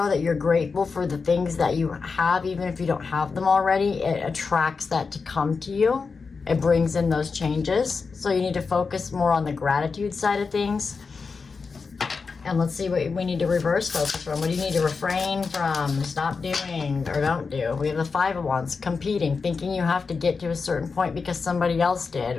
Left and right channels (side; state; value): right; quieter; 4.8 dB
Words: that you're grateful for the things that you have, even if you don't have them already, it attracts that to come to you. It brings in those changes. So you need to focus more on the gratitude side of things. And let's see what we need to reverse focus from. What do you need to refrain from, stop doing, or don't do? We have the 5 of Wands, competing, thinking you have to get to a certain point because somebody else